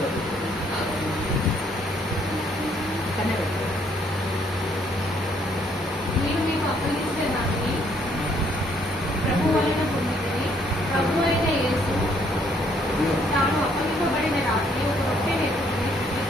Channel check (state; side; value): normal; both; correlation 0.67